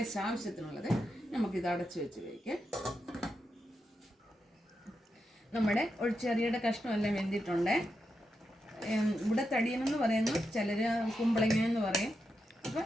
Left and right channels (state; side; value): normal; both; correlation 0.86